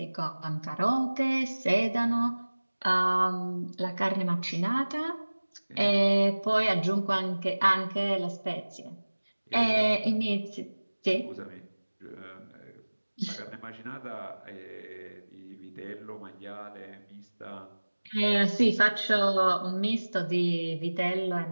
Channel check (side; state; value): both; inverted; correlation -1.00